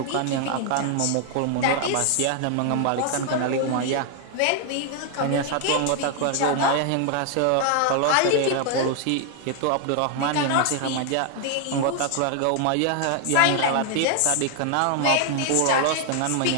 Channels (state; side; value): different; both; correlation 0.00